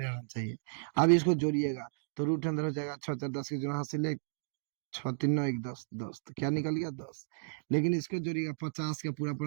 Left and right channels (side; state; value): left; silent; digital silence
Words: चाहिए। अब इसको जोड़िएगा तो रूट अंदर हो जाएगा 6 × 4 = 10 के जो हासिल है 6 × 3 = 9 = 10, 10 तो क्या निकल गया 10। लेकिन इसको जोड़िएगा 50 का पूरा